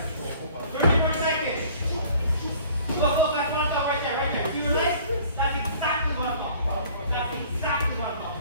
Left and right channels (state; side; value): inverted; both; correlation -0.52